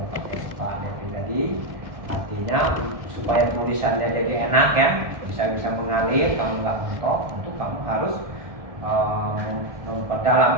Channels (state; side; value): late; left; 1.7 ms